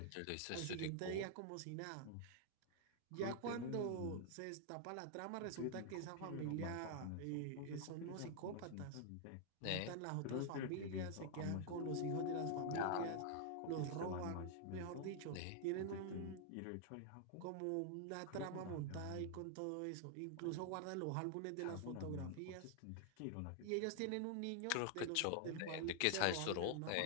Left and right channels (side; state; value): both; different; correlation 0.00